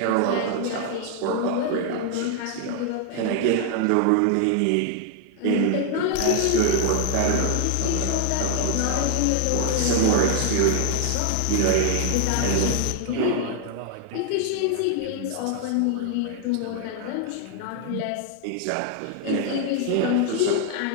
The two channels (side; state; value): both; different; correlation 0.00